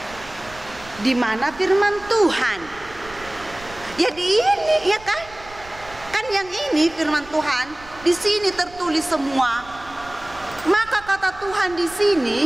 Di mana firman Tuhan? Ya di ini, ya kan? Kan yang ini firman Tuhan, di sini tertulis semua. Maka kata Tuhan di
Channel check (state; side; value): noise; right; rumble, 20 dB below the sound